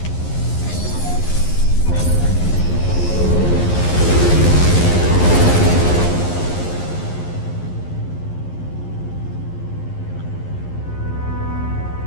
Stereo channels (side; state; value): right; late; 11 ms